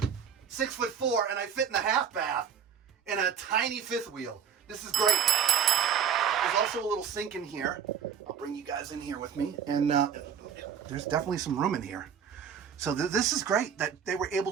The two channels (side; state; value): left; quieter; 7.7 dB